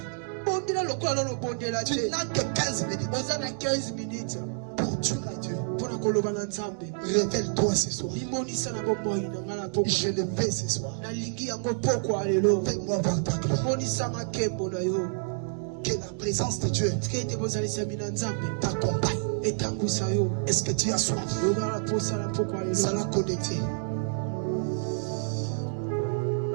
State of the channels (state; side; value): silent; left; digital silence